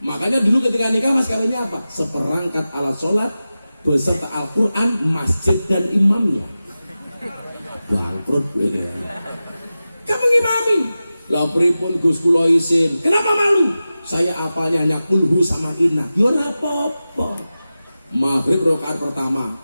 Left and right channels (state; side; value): inverted; both; correlation -0.94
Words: dulu ketika nikah mas kawinnya apa? Seperangkat alat sholat beserta Al-Quran, masjid dan imamnya. Bangkrut ini. Kamu ngimami? Lah pripun Gus kula isin. Kenapa malu? Saya apalnya hanya kulhu sama inna. Yo ora apa-apa. Maghrib rakaat pertama,